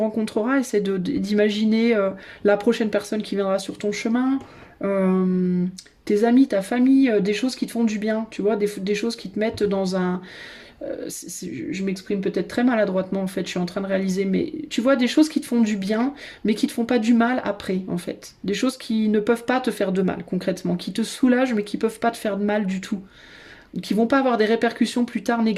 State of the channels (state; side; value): identical; both; correlation 1.00